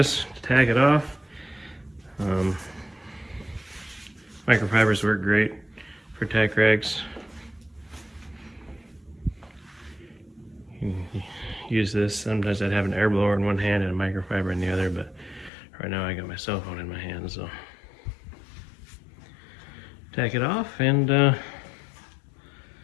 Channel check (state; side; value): drops out; right; at 15.5 s